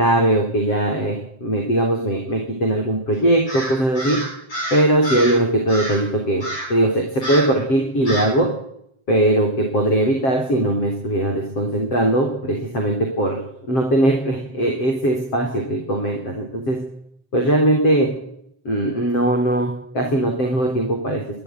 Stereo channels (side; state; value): right; late; 7.6 ms